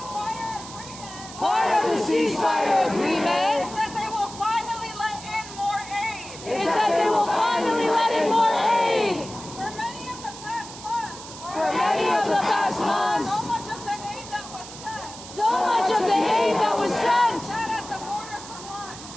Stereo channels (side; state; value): right; noise; hiss, 14 dB below the sound